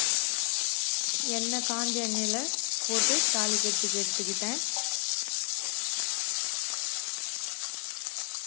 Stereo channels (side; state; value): right; quieter; 36.5 dB